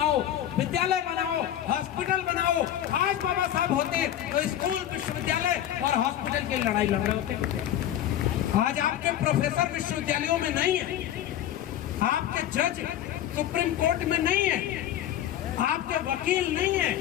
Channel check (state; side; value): quieter; right; 11.5 dB